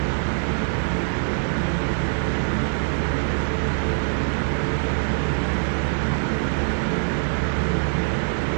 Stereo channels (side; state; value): left; silent; 63 dB below the other